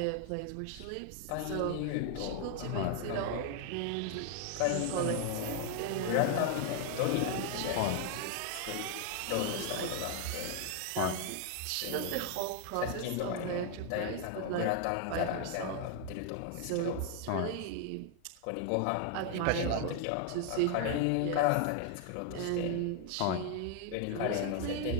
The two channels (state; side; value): different; both; correlation 0.00